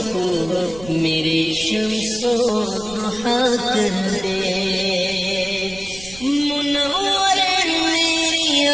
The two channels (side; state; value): right; noise; rumble, 18 dB below the sound